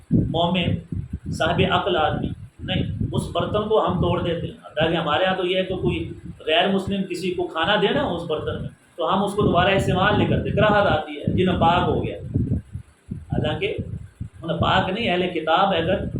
مومن صاحب عقل آدمی نہیں، اس برتن کو ہم توڑ دیتے ہیں۔ تاکہ ہمارے یہاں تو یہ ہے کہ کوئی غیر مسلم کسی کو کھانا دے نا اس برتن میں، تو ہم اس کو دوبارہ استعمال نہیں کرتے، کراہت آتی ہے، یہ ناپاک ہو گیا، حالانکہ ناپاک نہیں، اہل کتاب ہے اگر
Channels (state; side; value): identical; both; correlation 1.00